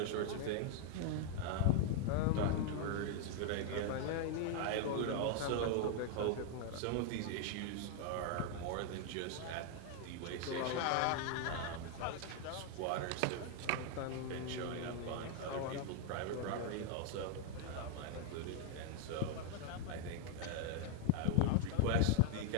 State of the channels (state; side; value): different; both; correlation 0.00